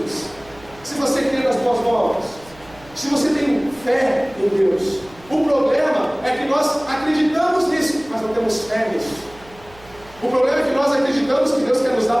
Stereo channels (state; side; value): noise; right; hum, 24 dB below the sound